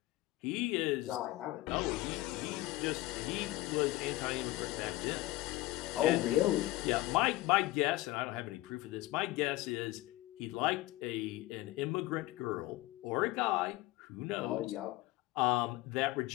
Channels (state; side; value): quieter; right; 18.1 dB